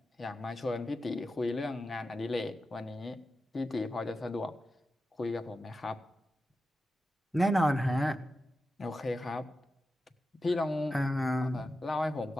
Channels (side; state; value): both; normal; correlation 0.91